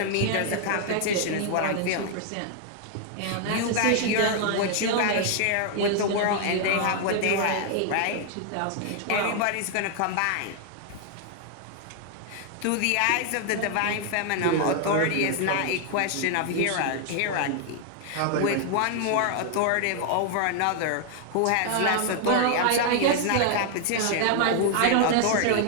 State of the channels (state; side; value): different; both; correlation 0.00